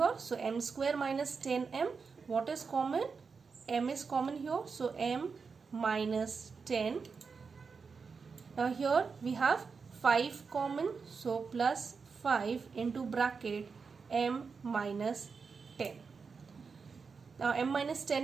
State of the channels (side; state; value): left; quieter; 5.2 dB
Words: So m square minus 10m, what is common? M is common here, so m minus 10. Now here we have 5 common, so plus 5 into bracket m minus 10. Now m minus